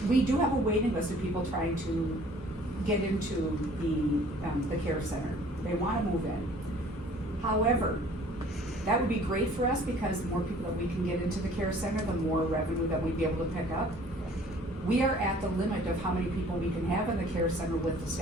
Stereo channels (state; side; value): normal; both; correlation 0.53